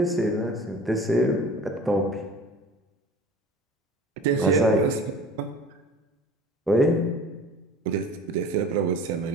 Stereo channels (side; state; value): both; normal; correlation 0.42